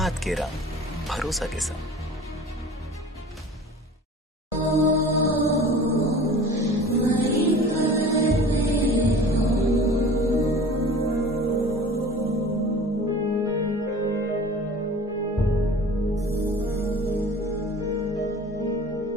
के रंग भरोसा के संग।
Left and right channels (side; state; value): both; normal; correlation 0.42